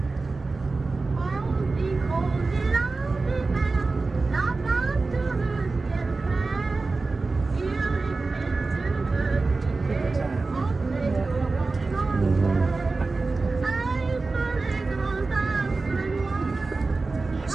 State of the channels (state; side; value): quieter; left; 3.7 dB